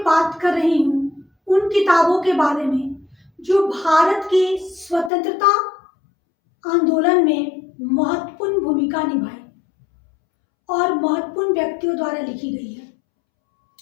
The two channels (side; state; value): right; drops out; at 5.1 s